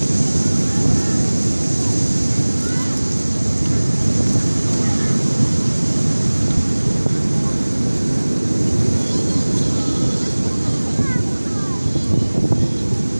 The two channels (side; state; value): both; inverted; correlation -1.00